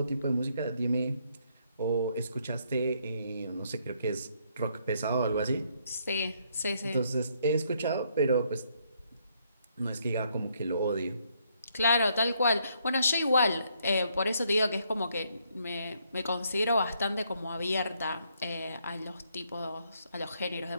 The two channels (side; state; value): both; inverted; correlation -0.72